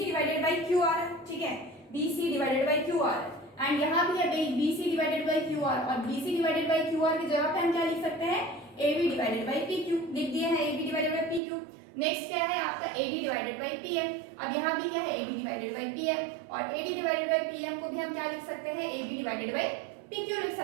divided by Q R, ठीक है, B C divided by Q R and यहाँ भी है B C divided by Q R, और B C divided by Q R की जगह पे हम क्या लिख सकते हैं, A B divided by P Q लिख दिए हैं, A B divided by P Q. Next क्या है आपका A D divided by P M, अब यहाँ भी क्या है A B divided by P M, और A D divided by P M को भी हम क्या लिख सकते हैं, A B divided by P Q लिख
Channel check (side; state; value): left; drops out; at 11.4 s